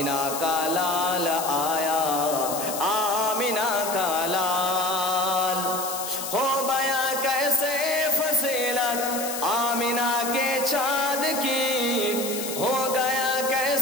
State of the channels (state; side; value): noise; left; hiss, 6 dB below the sound